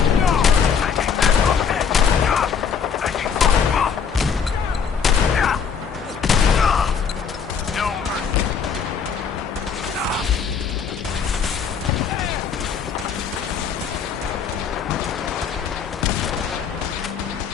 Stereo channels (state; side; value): quieter; right; 6.7 dB